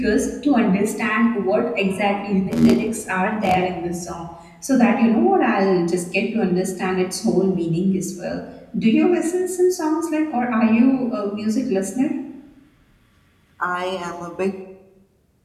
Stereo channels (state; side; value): identical; both; correlation 1.00